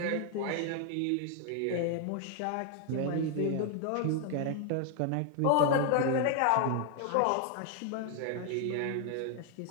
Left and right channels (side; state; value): both; different; correlation 0.00